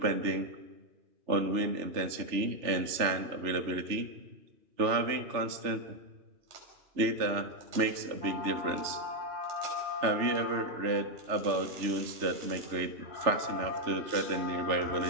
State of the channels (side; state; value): left; late; 3.3 ms